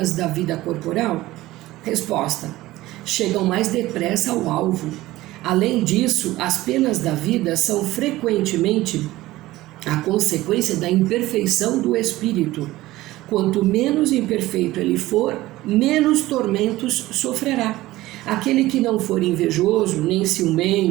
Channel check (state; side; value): quieter; left; 17.3 dB